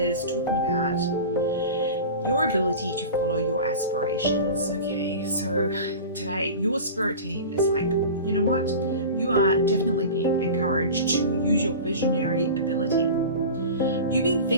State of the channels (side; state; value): both; inverted; correlation -0.33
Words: talking about your ability to follow your aspirations. Okay, so today your spirit team is like, you know what, you are definitely being encouraged to use your visionary ability. You've been